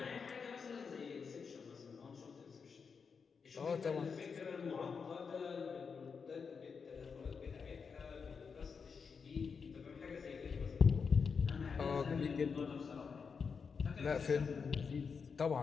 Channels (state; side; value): quieter; right; 5.7 dB